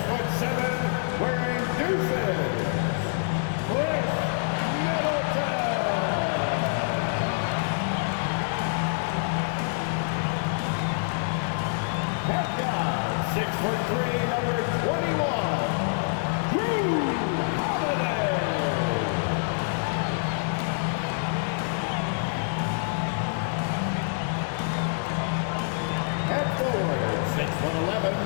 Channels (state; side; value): silent; right; digital silence